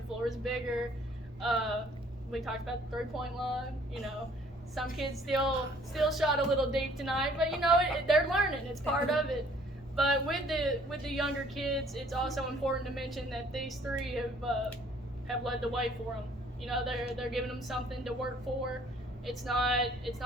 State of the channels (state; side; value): normal; both; correlation 0.59